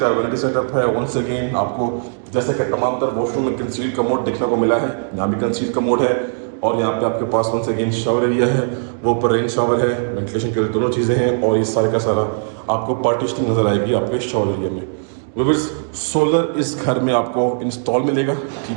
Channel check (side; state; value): left; silent; digital silence